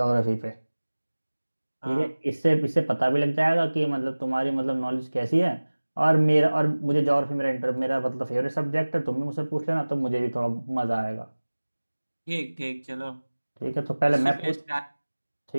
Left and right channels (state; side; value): inverted; both; correlation -1.00